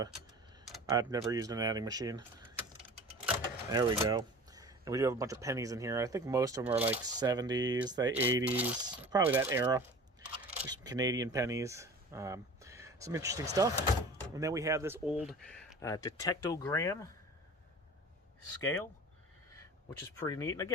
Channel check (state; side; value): normal; both; correlation 0.39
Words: I've never used an adding machine. There we go. And we do have a bunch of pennies in here. I think most of them are like 70s, the 80s, probably that era. There's some Canadian pennies. Some interesting stuff. And then we have this old detectogram scale, which is pretty neat. And